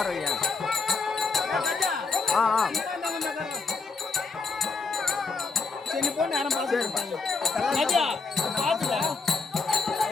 வைங்க. சரி போன யாரும் பார்த்து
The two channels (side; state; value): right; quieter; 4.3 dB